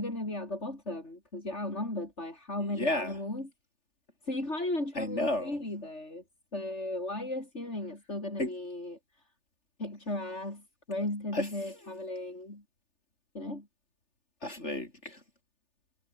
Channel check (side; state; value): right; late; 3.4 ms